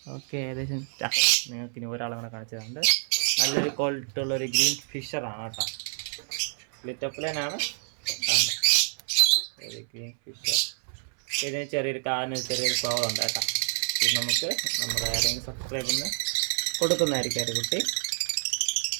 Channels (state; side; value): silent; left; 60 dB below the other